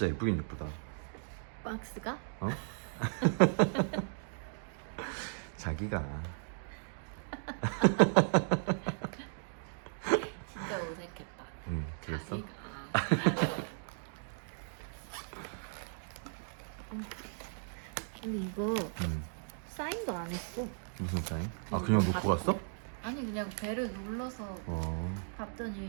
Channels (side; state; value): left; silent; digital silence